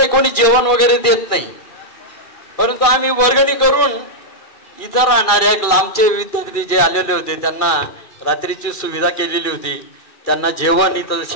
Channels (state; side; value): late; right; 2.4 ms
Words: कोणी जेवण वगैरे देत नाही. परंतु आम्ही वर्गणी करून इथं राहणाऱ्या लांबचे विद्यार्थी जे आलेले होते त्यांना रात्रीची सुविधा केलेली होती. त्यांना जेवण इथं